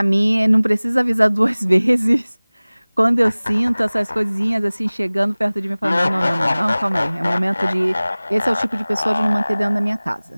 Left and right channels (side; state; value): both; inverted; correlation -0.99